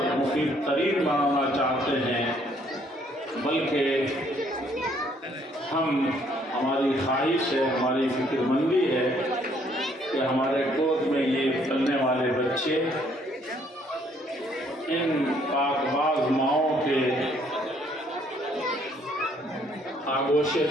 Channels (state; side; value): normal; both; correlation 0.65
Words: مفید ترین بنانا چاہتے ہیں، بلکہ ہماری خواہش ہے، ہماری فکر مندی ہے کہ ہمارے گود میں یہ پلنے والے بچے ان پاک باز ماؤں کے آغوش